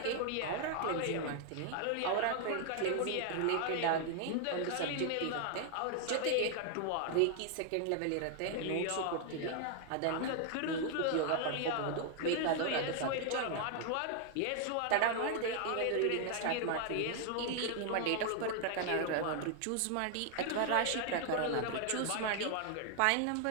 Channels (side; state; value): both; different; correlation 0.00